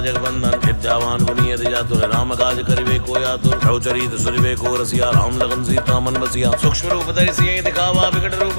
विद्यावान गुणी अति चातुर राम काज करिबे को आतुर प्रभुचरित सुनिबे को रसिया राम लगन सीता मन बसिया सूक्ष्म रूप धरि सियहि दिखावा विकट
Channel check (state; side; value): inverted; both; correlation -1.00